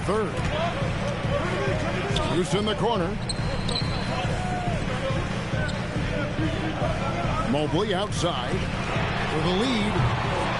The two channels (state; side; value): identical; both; correlation 1.00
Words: third. Loose in the corner. Mobley outside with a lead.